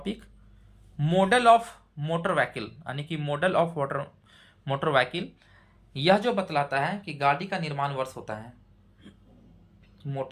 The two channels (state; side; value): identical; both; correlation 1.00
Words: model of motor vehicle, यानी कि मॉडल ऑफ मोटर व्हीकल। यह जो बतलाता है कि गाड़ी का निर्माण वर्ष होता है,